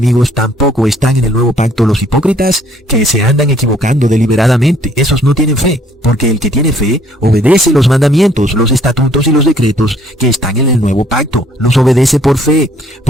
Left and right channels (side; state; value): both; normal; correlation 0.62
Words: tampoco están en el nuevo pacto los hipócritas que se andan equivocando deliberadamente. Esos no tienen fe, porque el que tiene fe obedece los mandamientos, los estatutos y los decretos que están en el nuevo pacto. Los obedece por fe.